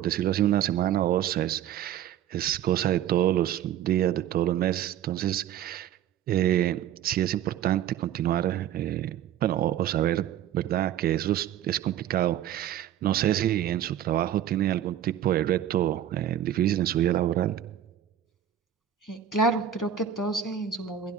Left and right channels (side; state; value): left; quieter; 10.5 dB